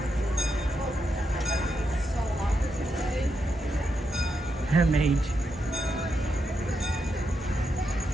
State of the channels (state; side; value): normal; both; correlation 0.84